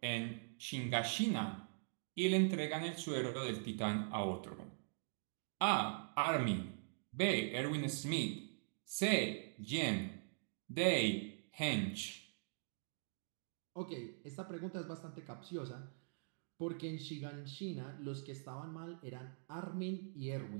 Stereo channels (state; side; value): silent; left; digital silence